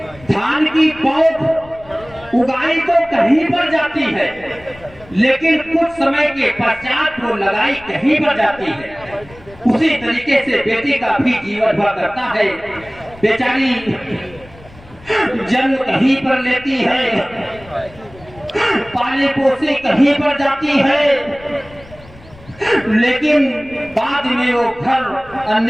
धान की पौध उगाई तो कहीं पर जाती है, लेकिन कुछ समय के पश्चात वो लगाई कहीं पर जाती है। उसी तरीके से बेटी का भी जीवन हुआ करता है। बेचारी जन्म कहीं पर लेती है, पाले पोसे कहीं पर जाती है, लेकिन बाद में वो घर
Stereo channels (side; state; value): left; noise; rumble, 22 dB below the sound